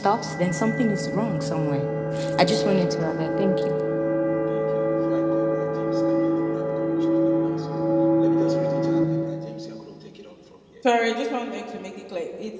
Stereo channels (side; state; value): both; identical; correlation 1.00